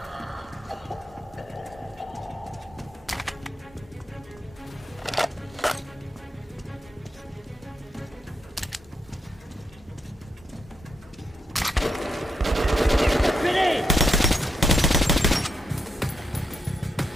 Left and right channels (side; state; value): both; normal; correlation 0.80